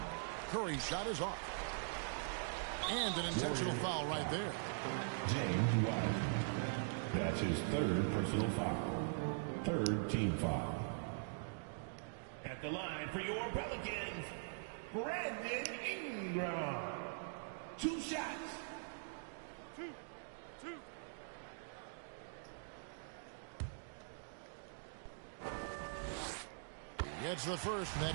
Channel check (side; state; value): left; silent; digital silence